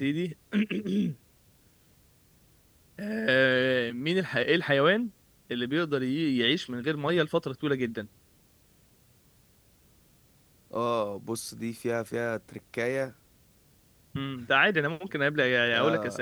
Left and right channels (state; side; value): identical; both; correlation 1.00